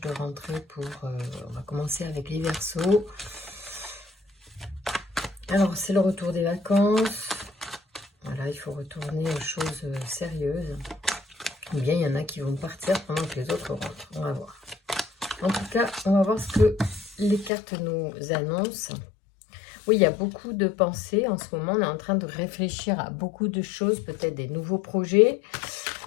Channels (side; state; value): right; drops out; at 17.5 s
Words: rentrée pour... on va commencer avec les Verseaux. Alors, c'est le retour des vacances. Voilà, il faut retourner aux choses sérieuses. Ou bien, il y en a qui vont partir pendant que les autres rentrent. On va voir. En tout cas, on va voir ce que les cartes nous annoncent. Oui, il y a beaucoup de pensées en ce moment. On est en train de réfléchir à beaucoup de choses, peut-être des nouveaux projets.